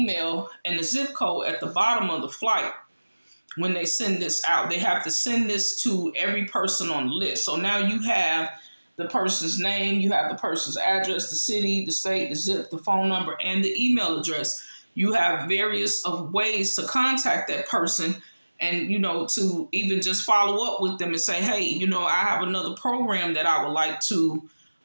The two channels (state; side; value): inverted; both; correlation -1.00